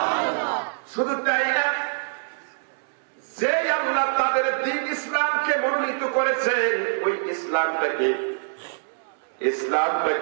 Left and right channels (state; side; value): silent; left; 61 dB below the other